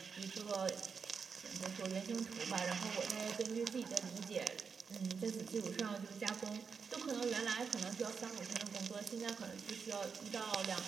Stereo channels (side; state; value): left; quieter; 5.8 dB